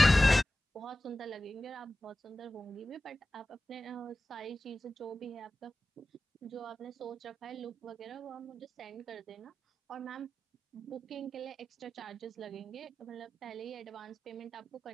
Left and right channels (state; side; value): normal; both; correlation 0.95